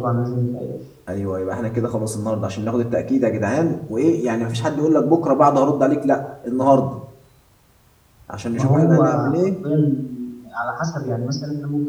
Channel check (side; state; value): both; identical; correlation 1.00